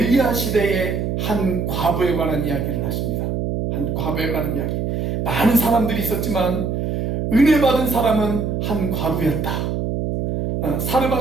시대의 한 과부에 관한 이야기를 하십니다. 한 과부에 관한 이야기. 많은 사람들이 있었지만 은혜 받은 사람은 한 과부였다.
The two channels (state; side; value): noise; right; hum, 1 dB below the sound